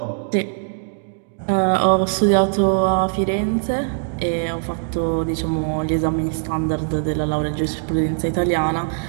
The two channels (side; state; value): left; silent; digital silence